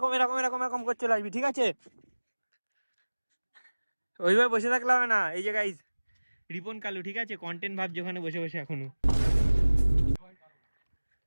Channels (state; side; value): inverted; both; correlation -1.00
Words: এরকম এরকম এরকম করে চলে আসবি, ঠিক আছে? ওইভাবে বসে থাকলে হবে না। এই যে গাইজ রিপন কালু, ঠিক আছে, কন্টেন্ট ভাবছে ওখানে বসে বসে এখনো।